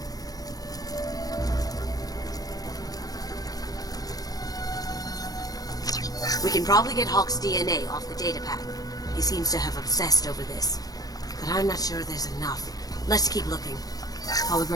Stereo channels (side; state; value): right; late; 0.18 ms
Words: We can probably get Hawk's DNA off the data pad. He seems to have obsessed over this. But I'm not sure there's enough. Let's keep looking.